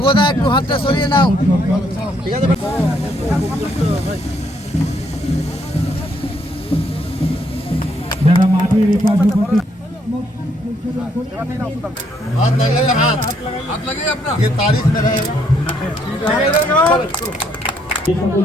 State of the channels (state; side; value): normal; both; correlation 0.71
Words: একটু হাতটা সরিয়ে নাও, ঠিক আছে? যারা মাটির এপাশে हाथ लगाइए, हाथ लगाइए अपना, ये तारीफ में रहेगा। যে সকল